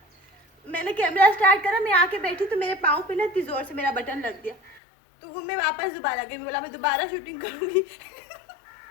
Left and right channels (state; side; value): drops out; right; at 4.8 s